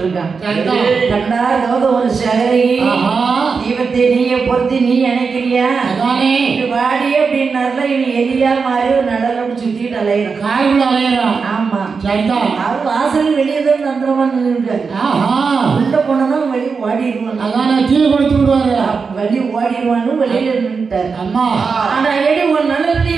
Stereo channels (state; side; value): quieter; left; 5.2 dB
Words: இருக்கான். கண்டா ஒரு சகரி தீபத்தை நீய பொறுத்து நீ நினைக்கிறியா வாடி அப்படின்னாருல இவன் எலியா மாதிரி ஒரு நடலோடு சுத்திட்டு அலையிறான். ஆமா, அவர் வாசல் வெளியே தான் தந்திரமா நின்றுருக்காரு. உள்ள போனதான் வெளியே ஓடிடுவான். கீழே கொடுத்து விடுவாரு. வெளியே ஓடிடுவான்னு வெளியில நின்றுட்டாரு. ஆனா எடி ஒரு நல்ல